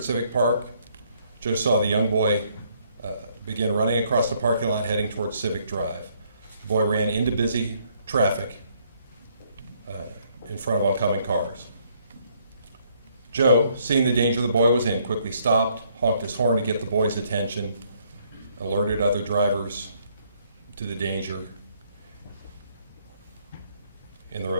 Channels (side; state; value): both; inverted; correlation -0.68